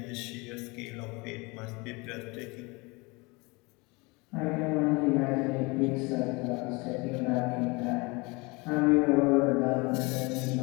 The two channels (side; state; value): right; quieter; 26.5 dB